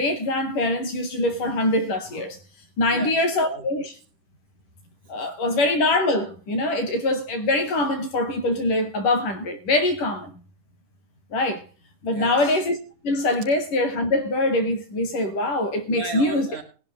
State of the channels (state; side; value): late; right; 10 ms